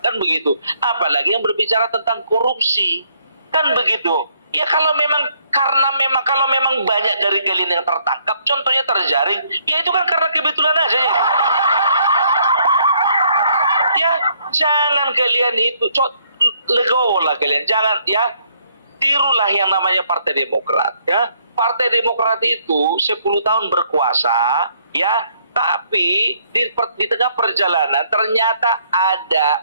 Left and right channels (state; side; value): inverted; both; correlation -0.68